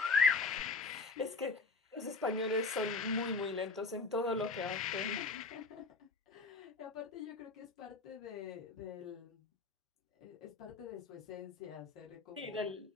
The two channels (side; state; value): right; quieter; 4.1 dB